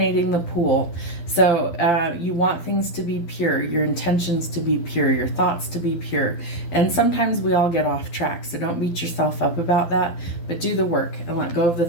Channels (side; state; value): right; late; 12 ms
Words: the pool. So you want things to be pure, your intentions to be pure, your thoughts to be pure. And sometimes we all get off track, so don't beat yourself up about that, but do the work and let go of the